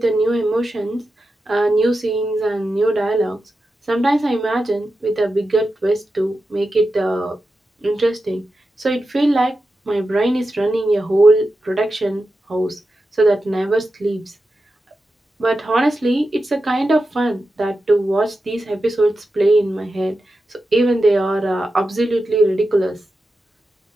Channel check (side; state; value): both; normal; correlation 0.90